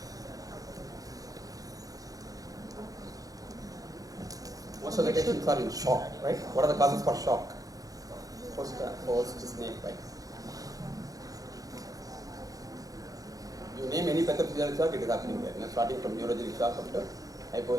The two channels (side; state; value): left; late; 0.17 ms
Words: Most of the patients are in shock, right? What are the causes for shock? Post snake bite. You name any pathophysiological shock, it is happening there. Starting from neurogenic shock up to